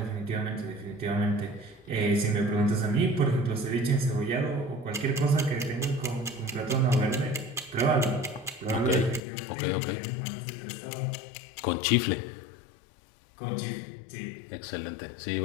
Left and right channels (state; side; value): drops out; right; at 9.2 s